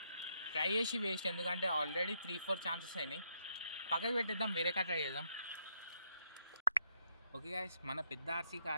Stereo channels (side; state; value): both; inverted; correlation -0.77